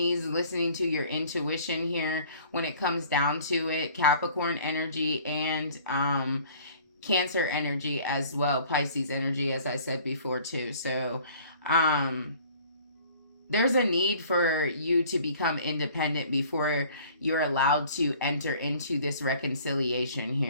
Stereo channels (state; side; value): inverted; both; correlation -0.51